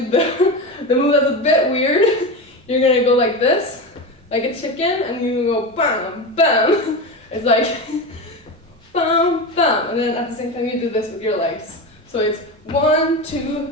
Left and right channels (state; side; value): normal; both; correlation 0.22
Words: do the move that's a bit weird. You're going to go like this, like a chicken, and you go bam, bam. It's like bam, bam, and then at the same time you do this with your legs. So it's 1,